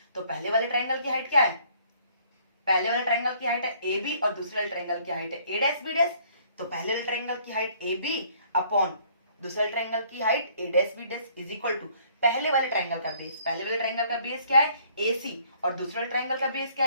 तो पहले वाले ट्राइंगल की हाइट क्या है, पहले वाले ट्राइंगल की हाइट है ए बी और दूसरे वाले ट्राइंगल की हाइट है ए डैश बी डैश। तो पहले वाले ट्राइंगल की हाइट ए बी अपॉन दूसरे वाले ट्राइंगल की height A dash B dash is equal to पहले वाले ट्राइंगल का बेस, पहले वाले ट्राइंगल का बेस क्या है ए सी और दूसरे वाले ट्राइंगल का बेस क्या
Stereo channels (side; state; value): both; inverted; correlation -0.60